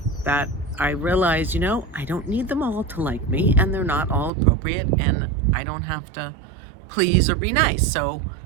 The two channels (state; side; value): drops out; left; at 4.3 s